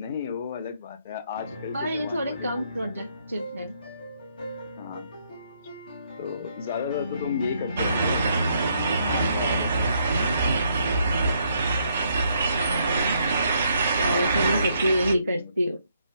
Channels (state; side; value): inverted; both; correlation -0.72